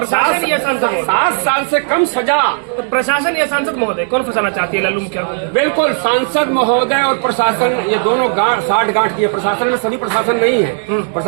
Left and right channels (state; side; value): silent; left; digital silence